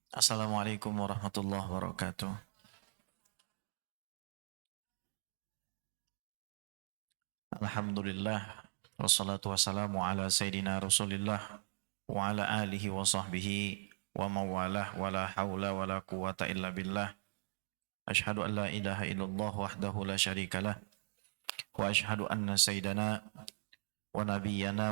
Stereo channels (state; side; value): silent; left; digital silence